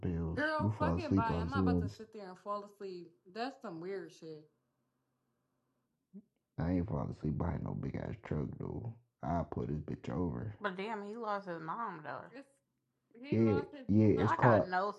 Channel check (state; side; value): identical; both; correlation 1.00